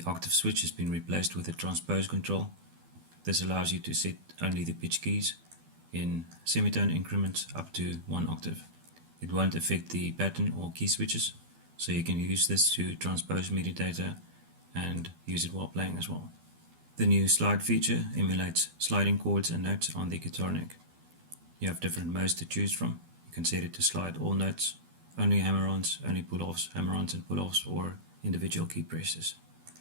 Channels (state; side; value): late; left; 12 ms